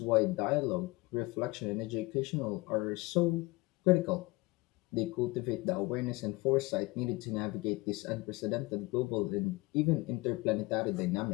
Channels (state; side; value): quieter; right; 23.4 dB